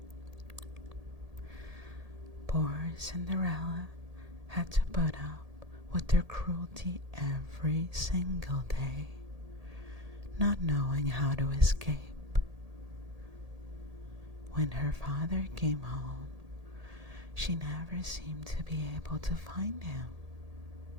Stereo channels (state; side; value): late; left; 1.8 ms